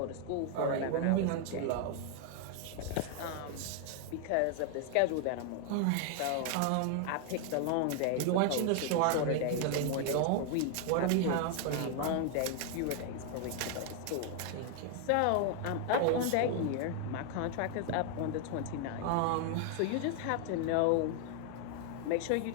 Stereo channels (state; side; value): different; both; correlation 0.00